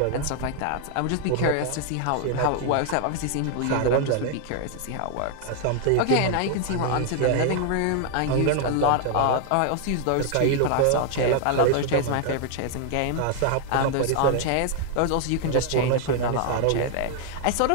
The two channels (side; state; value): both; different; correlation 0.00